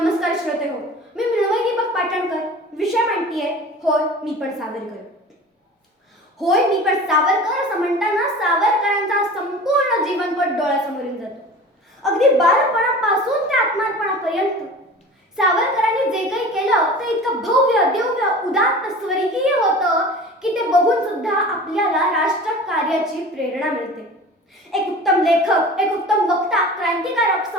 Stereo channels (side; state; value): both; normal; correlation 0.38